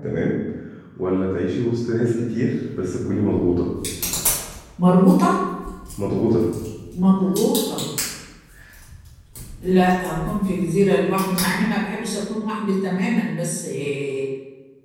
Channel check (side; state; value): both; identical; correlation 1.00